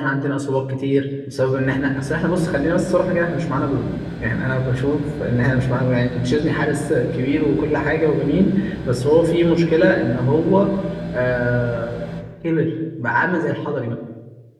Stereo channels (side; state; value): both; identical; correlation 1.00